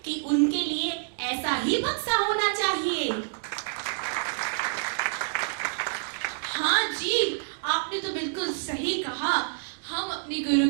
कि उनके लिए ऐसा ही बक्सा होना चाहिए। हाँ जी, आपने तो बिल्कुल सही कहा। हम अपनी गुरु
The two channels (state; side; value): silent; left; digital silence